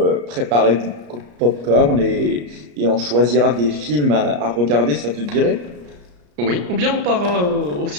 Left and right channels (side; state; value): left; late; 34 ms